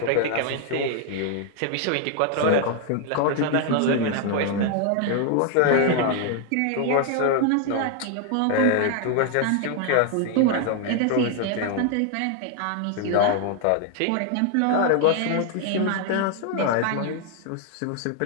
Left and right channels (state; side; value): different; both; correlation 0.00